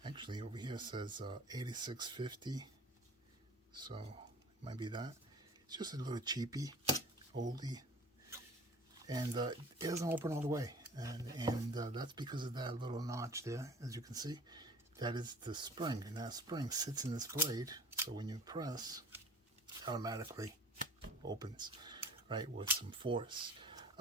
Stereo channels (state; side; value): normal; both; correlation 0.44